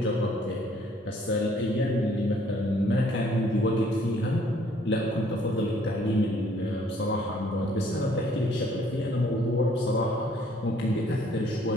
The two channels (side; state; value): both; normal; correlation 0.62